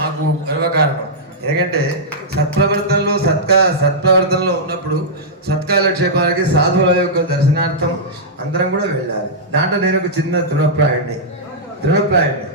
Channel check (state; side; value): normal; both; correlation -0.10